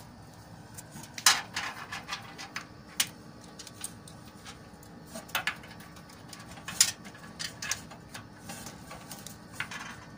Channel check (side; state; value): both; identical; correlation 1.00